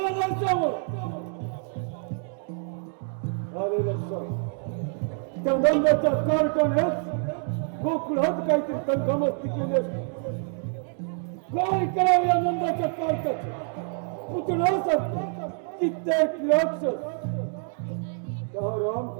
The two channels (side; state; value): left; silent; 55 dB below the other